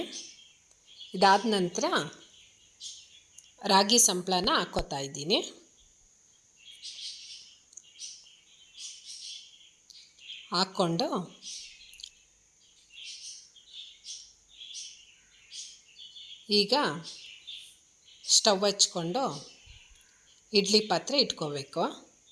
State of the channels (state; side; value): identical; both; correlation 1.00